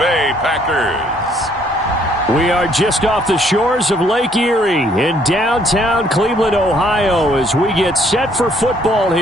Packers. We are just off the shores of Lake Erie in downtown Cleveland, Ohio, as we get set for football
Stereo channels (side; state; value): both; normal; correlation 0.65